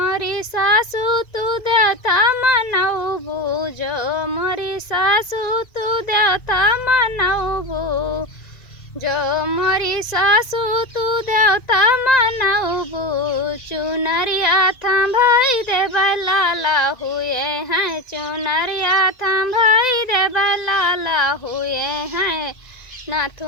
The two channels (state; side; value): late; right; 2.0 ms